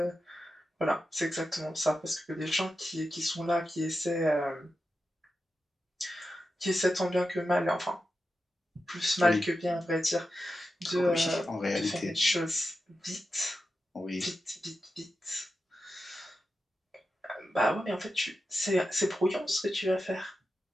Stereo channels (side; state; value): both; normal; correlation 0.90